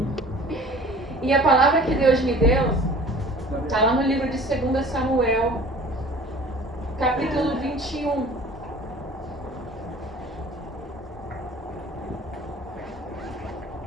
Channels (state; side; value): normal; both; correlation 0.46